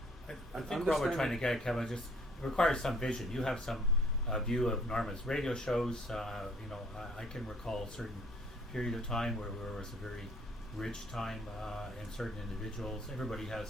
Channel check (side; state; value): both; normal; correlation 0.59